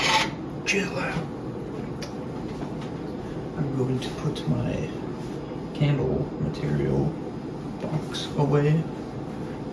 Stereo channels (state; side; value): identical; both; correlation 1.00